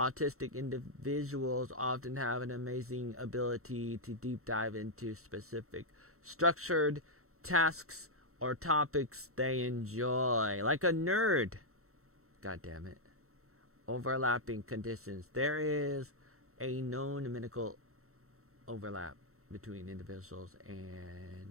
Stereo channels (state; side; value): late; left; 0.63 ms